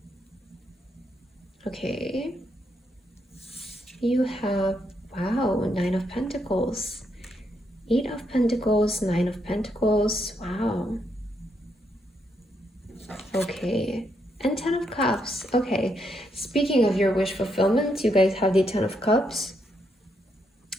Okay. You have, wow, 9 of Pentacles. 8 of Pentacles, 9 of Pentacles. Wow. Okay. And 10 of Cups. Okay. Speaking of your wish fulfillment, you guys have the 10 of Cups.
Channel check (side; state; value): both; normal; correlation 0.78